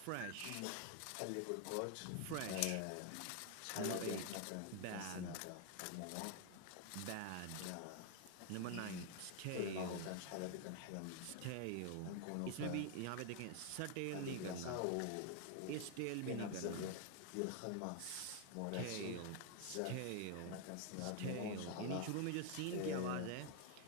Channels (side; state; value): both; different; correlation 0.00